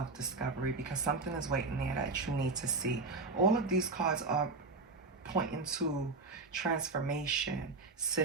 because something is waiting there that you need to see. All of these cards are pointing to transformation,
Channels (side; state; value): left; quieter; 3.8 dB